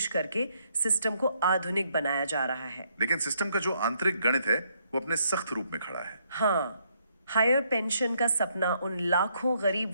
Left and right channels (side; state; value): both; inverted; correlation -0.72